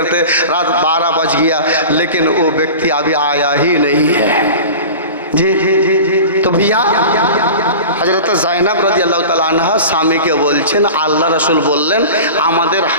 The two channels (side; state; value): both; inverted; correlation -0.34